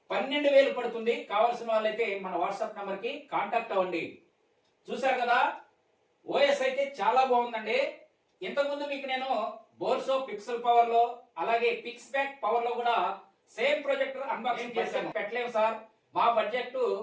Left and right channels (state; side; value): identical; both; correlation 1.00